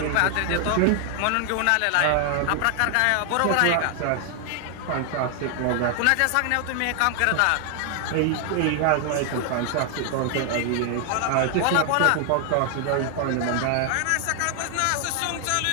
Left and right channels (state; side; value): different; both; correlation 0.00